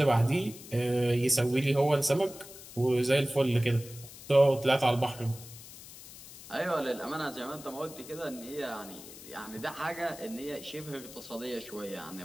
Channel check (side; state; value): left; noise; hiss, 16 dB below the sound